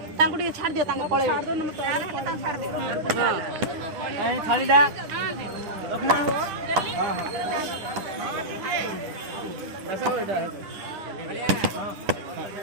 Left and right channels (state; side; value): late; left; 10 ms